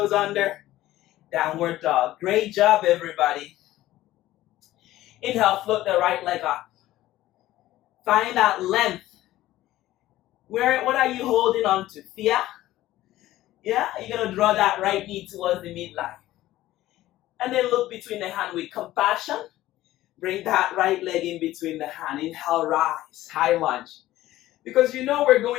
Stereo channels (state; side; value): quieter; right; 15.3 dB